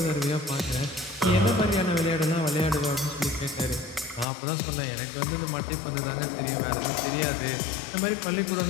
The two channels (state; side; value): drops out; right; at 4.2 s